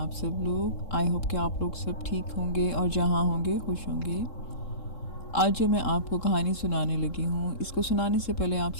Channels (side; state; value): right; late; 3.7 ms